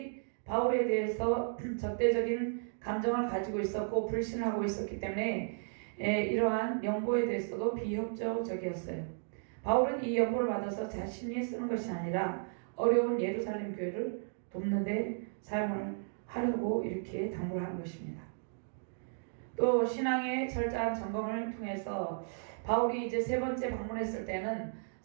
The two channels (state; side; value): silent; left; digital silence